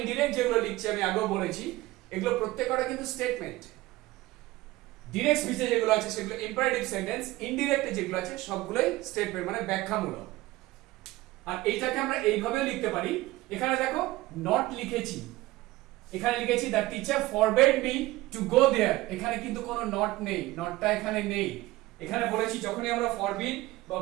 যেগুলো লিখছি, আমি আগেও বলেছি, এগুলো প্রত্যেকটা কিন্তু স্টেটমেন্ট। ডিরেক্ট স্পিচে যেগুলো আছে সেগুলো ইম্পারেটিভ সেন্টেন্স, ইনডিরেক্টে যেগুলো আছে সবগুলোই স্টেটমেন্ট মানে ব্যাখ্যামূলক। আর এইটাকে আমরা এইভাবেও লিখতে পারি, এখানে দেখো নট লিখেছি, এখানে লিখেছি the teacher forbade me to go there, এখানে কিন্তু কোনো নট নেই, নটটা এখানে নেই। এখানে বলেছি যখনই আমরা ফরবিড বা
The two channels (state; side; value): quieter; left; 18.4 dB